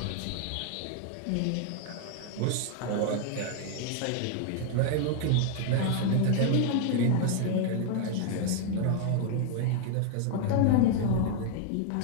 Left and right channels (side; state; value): both; different; correlation 0.00